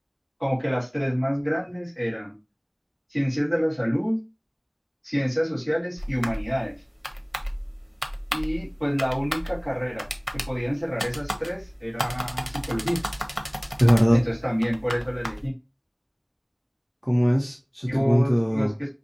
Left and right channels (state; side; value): identical; both; correlation 1.00